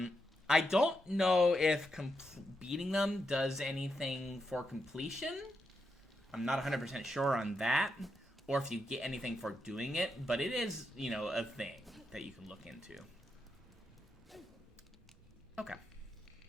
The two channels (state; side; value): normal; both; correlation 0.84